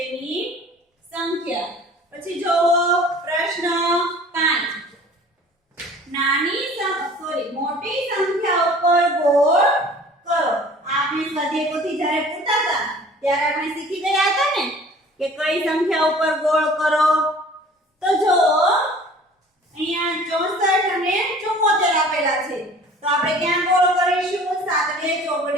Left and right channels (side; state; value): both; normal; correlation 0.47